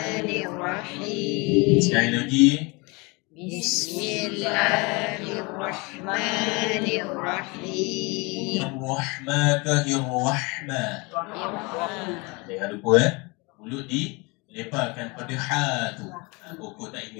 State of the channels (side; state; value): right; quieter; 27.5 dB